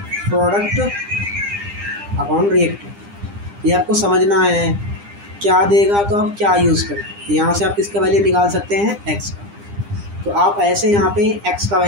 product upon reactant. ये आपको समझना है क्या देगा तो आप क्या यूज़ करें। यहाँ से आप किसका वैल्यू निकाल सकते हैं, एक्स का। तो आप ऐसे यहाँ पे एक्स का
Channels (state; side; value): late; left; 9.9 ms